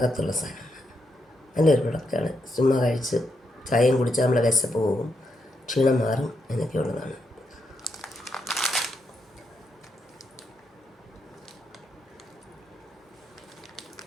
സാധനമാണ്. നല്ലൊരു പ്രൊഡക്റ്റാണ്. ചുമ്മാ കഴിച്ച് ചായയും കുടിച്ചാൽ നമ്മുടെ വിശപ്പ് പോകും, ക്ഷീണം മാറും, അതിനൊക്കെ ഉള്ളതാണ്.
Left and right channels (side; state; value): both; normal; correlation 0.81